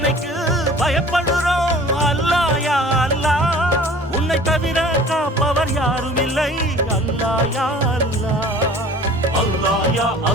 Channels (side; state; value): both; normal; correlation 0.47